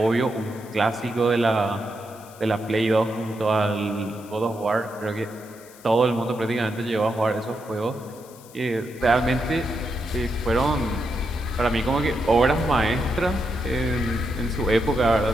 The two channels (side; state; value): left; noise; hiss, 22 dB below the sound